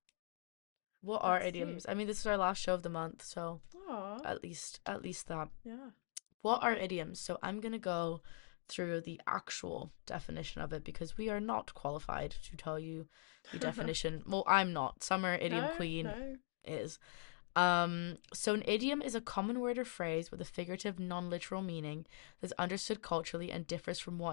what are Let's see. idioms? I mean, this is our last show of the month, so Aw, at least that. yeah. What are idioms? So I'm gonna go through the actual definition of it because we are not qualified to tell you the definition. Well, I'm not. Summer Idiom No, Queen no. is. So an idiom is a common word or phrase with a figurative, non-literal meaning that's understood culturally and differs from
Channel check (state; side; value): silent; right; digital silence